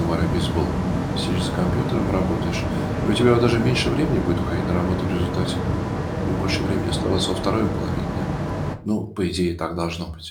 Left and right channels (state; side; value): identical; both; correlation 1.00